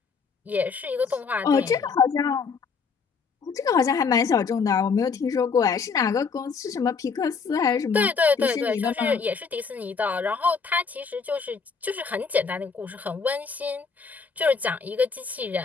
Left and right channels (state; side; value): quieter; right; 5.4 dB